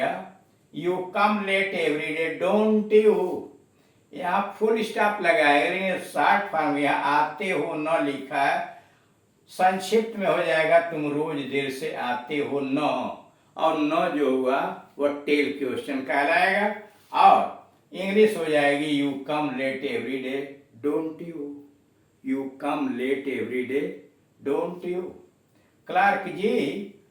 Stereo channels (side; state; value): both; identical; correlation 1.00